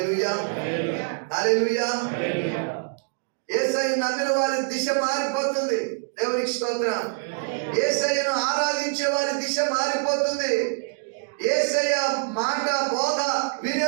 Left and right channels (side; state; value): left; silent; digital silence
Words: హల్లెలూయా. యేసయ్య నమ్మిన వారి దిశ మారిపోతుంది. దేవునికి స్తోత్రం. యేసయ్యను ఆరాధించే వారి దిశ మారిపోతుంది. యేసయ్య మాట బోధ